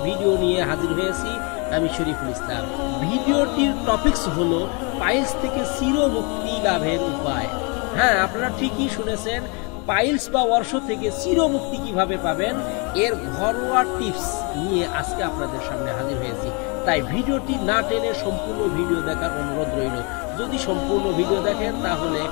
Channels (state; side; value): quieter; right; 32.4 dB